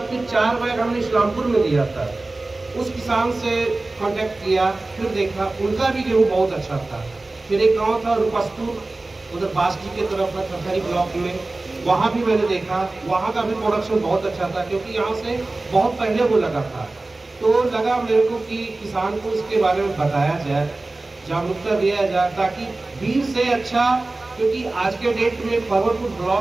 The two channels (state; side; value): quieter; left; 3.1 dB